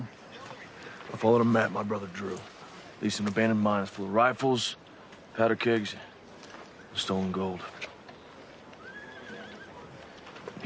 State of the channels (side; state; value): both; identical; correlation 1.00